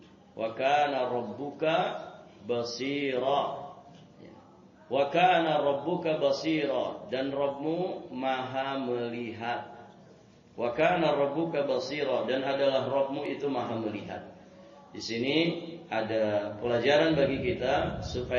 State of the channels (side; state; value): both; identical; correlation 1.00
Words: Wa kana rabbuka basira. Wa kana rabbuka basira, dan Rabbmu maha melihat. Wa kana rabbuka basira, dan adalah Rabbmu itu maha melihat. Di sini ada pelajaran bagi kita